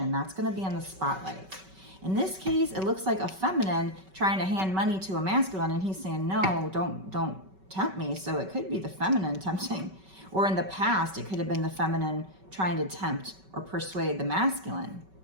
that's going to be in the spotlight. In this case, it looks like a feminine trying to hand money to a masculine, and he's saying, no, don't tempt me. So it could be the feminine tempting. Or in the past, it could have been the feminine trying to tempt or persuade the masculine.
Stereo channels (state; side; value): late; left; 5.3 ms